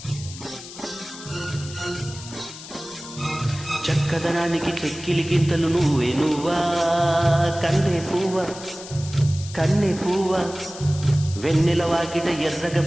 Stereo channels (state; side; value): noise; left; hiss, 14 dB below the sound